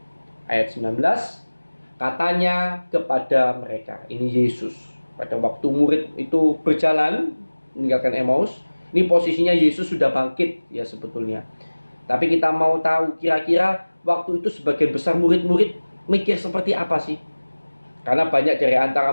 Ayat 19, katanya kepada mereka, ini Yesus. Pada waktu murid itu berjalan meninggalkan Emmaus, ini posisinya Yesus sudah bangkit ya sebetulnya. Tapi kita mau tahu kira-kira waktu itu sebagian besar murid-murid mikir seperti apa sih? Karena banyak dari antara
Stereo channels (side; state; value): both; inverted; correlation -1.00